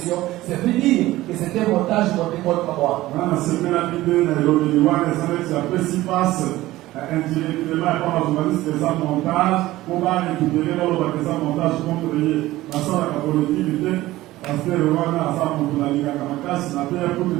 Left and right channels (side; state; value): left; quieter; 16.9 dB